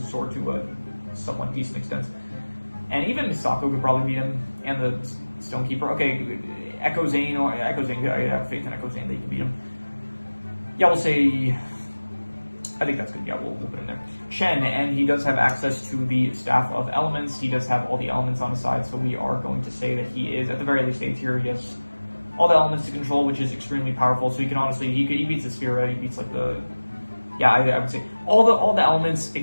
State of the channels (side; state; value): both; inverted; correlation -1.00